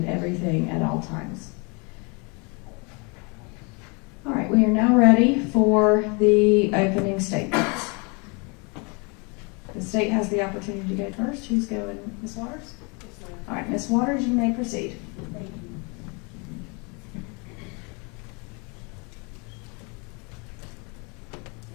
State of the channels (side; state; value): right; quieter; 31.6 dB